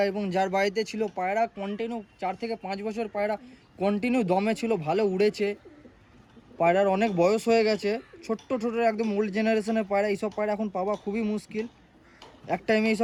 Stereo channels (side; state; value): both; identical; correlation 1.00